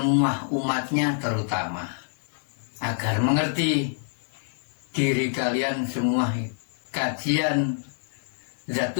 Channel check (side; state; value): right; silent; 61 dB below the other